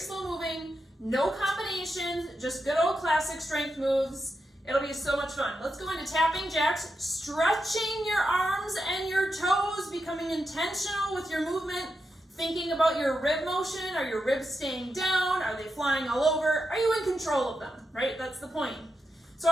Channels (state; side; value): normal; both; correlation 0.86